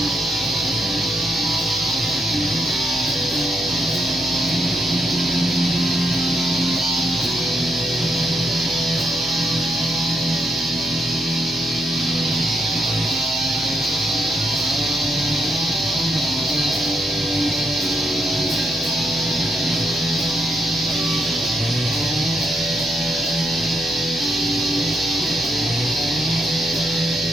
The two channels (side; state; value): both; normal; correlation 0.78